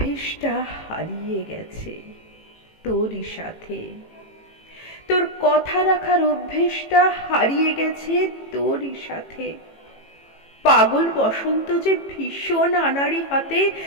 হারিয়ে গেছে তোরই সাথে। তোর কথা রাখার অভ্যেসটা হারিয়ে গেছে তোরই সাথে। পাগল বসন্ত যে ভীষণ আনাড়ি হাতে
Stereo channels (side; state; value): right; late; 18 ms